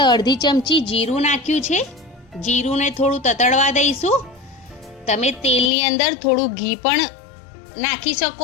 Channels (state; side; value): drops out; right; at 5.7 s